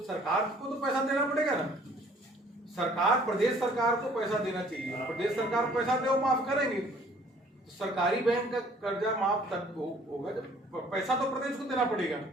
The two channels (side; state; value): both; normal; correlation 0.57